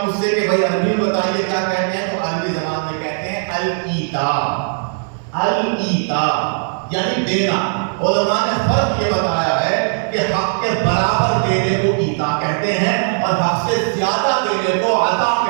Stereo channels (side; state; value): left; silent; 67 dB below the other